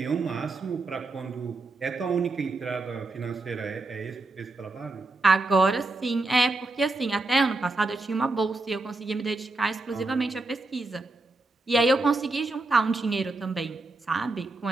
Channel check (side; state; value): left; quieter; 3.1 dB